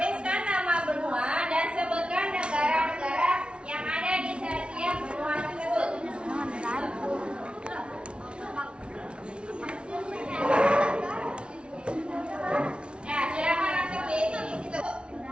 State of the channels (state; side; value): late; left; 0.058 ms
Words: nama benua dan sebutkan negara-negara yang ada di setiap benua tersebut. Nah, silakan langsung diisi di situ.